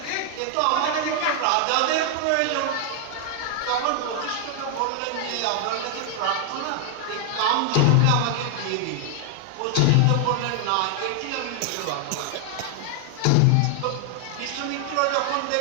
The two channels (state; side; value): different; both; correlation 0.00